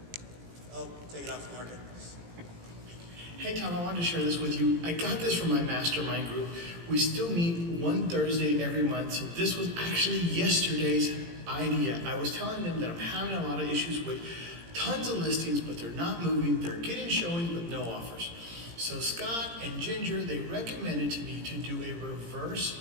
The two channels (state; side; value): late; left; 17 ms